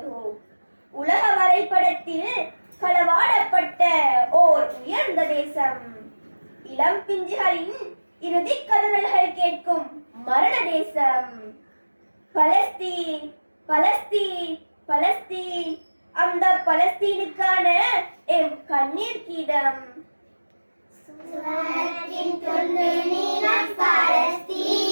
உலக வரைபடத்தில் களவாடப்பட்ட ஓர் உயர்ந்த தேசம், இளம் பிஞ்சுகளின் இறுதி கதறல்கள் கேட்கும் மரண தேசம். பலஸ்தீன், பலஸ்தீன், பலஸ்தீன், அந்த பலஸ்தீனுக்கான எம் கண்ணீர் கீதம். சுவனத்தின் தொண்டு நீலம்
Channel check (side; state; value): both; inverted; correlation -1.00